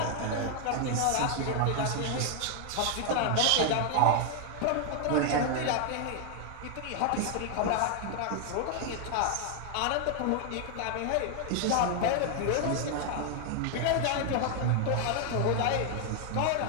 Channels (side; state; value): both; different; correlation 0.00